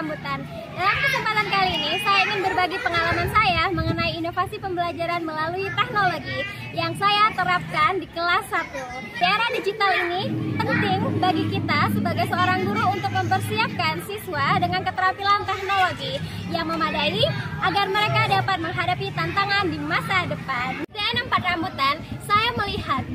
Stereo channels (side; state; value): both; identical; correlation 1.00